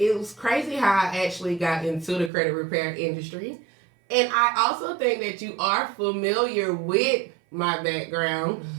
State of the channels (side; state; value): left; drops out; at 2.3 s